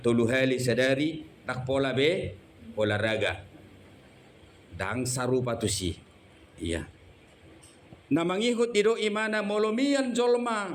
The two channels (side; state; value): both; identical; correlation 1.00